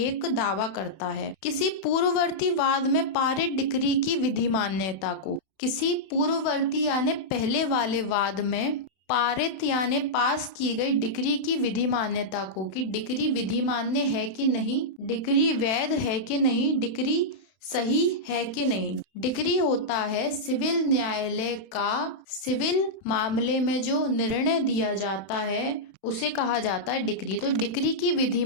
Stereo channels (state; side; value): late; right; 32 ms